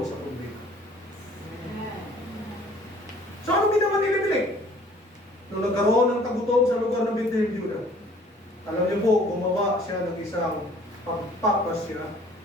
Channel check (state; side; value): normal; both; correlation 0.54